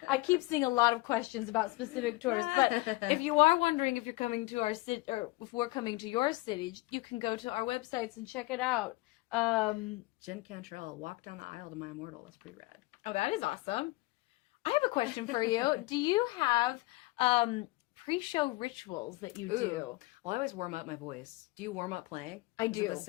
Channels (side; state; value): right; quieter; 22.3 dB